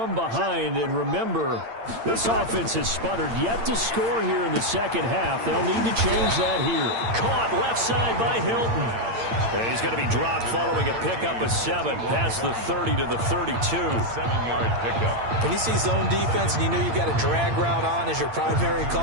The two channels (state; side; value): late; left; 8.8 ms